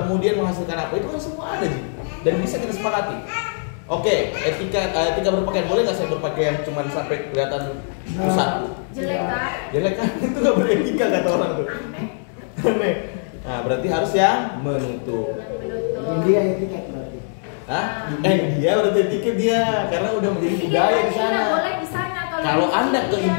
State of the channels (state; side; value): silent; right; digital silence